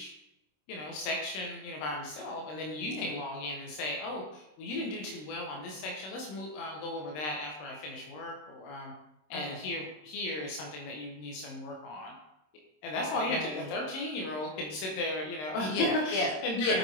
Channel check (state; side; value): late; right; 26 ms